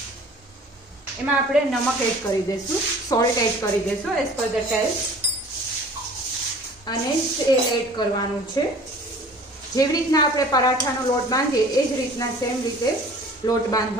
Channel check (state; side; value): normal; both; correlation 0.47